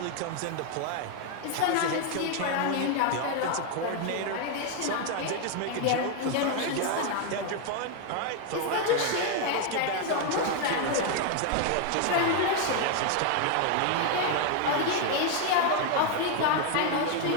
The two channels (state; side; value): different; both; correlation 0.01